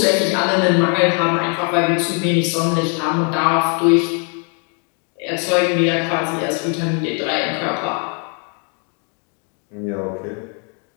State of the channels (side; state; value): right; quieter; 39.3 dB